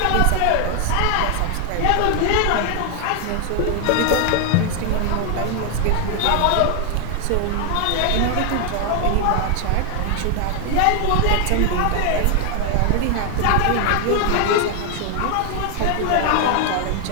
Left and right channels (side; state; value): both; different; correlation 0.00